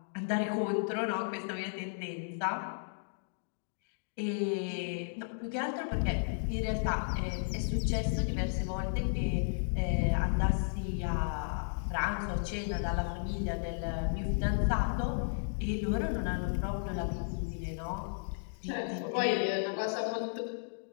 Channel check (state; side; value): silent; right; digital silence